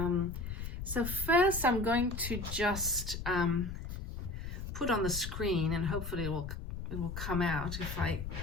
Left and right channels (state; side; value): noise; left; rumble, 6 dB below the sound